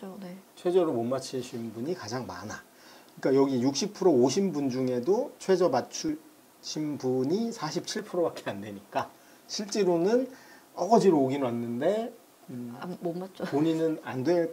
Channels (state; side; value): identical; both; correlation 1.00